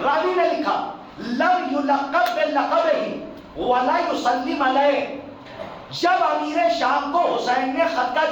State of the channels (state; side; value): identical; both; correlation 1.00